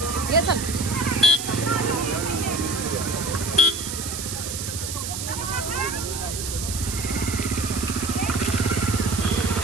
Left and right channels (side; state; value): right; noise; hiss, 5 dB below the sound